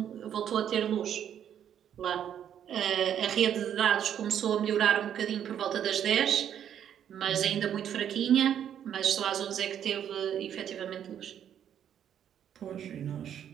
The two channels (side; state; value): left; quieter; 9.5 dB